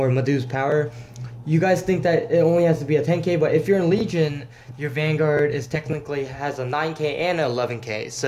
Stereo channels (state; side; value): identical; both; correlation 1.00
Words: Madhu's power, you guys think that it only has to be a 10k, but if you're in Legion, your Vanguard has a 9k and an 11k,